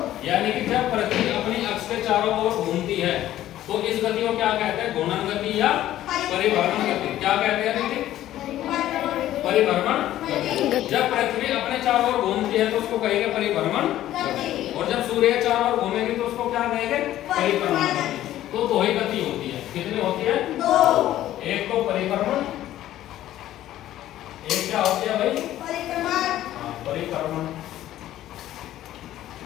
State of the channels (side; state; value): right; quieter; 13.4 dB